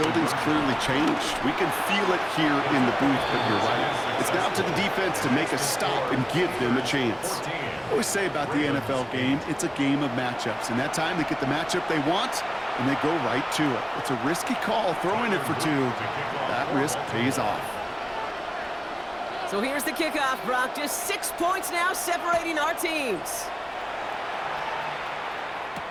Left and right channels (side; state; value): both; identical; correlation 1.00